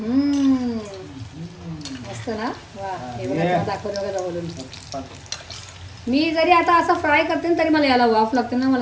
मस्त ना वा. हे बघा दाखवलं बघा बोलून. मी जरी आता असं फ्राय करते ना तरी मला याला वाफ लागते ना.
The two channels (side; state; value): both; identical; correlation 1.00